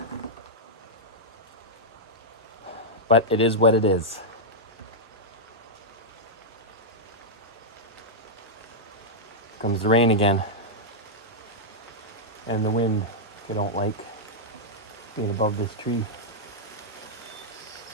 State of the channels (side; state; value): both; normal; correlation -0.07